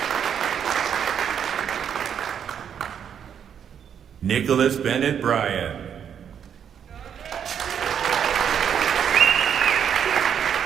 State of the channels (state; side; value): quieter; left; 8.3 dB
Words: Nicholas Bennett Bryan.